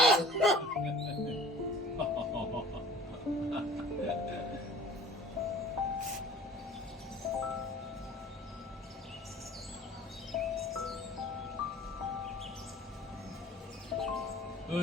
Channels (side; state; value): both; normal; correlation 0.47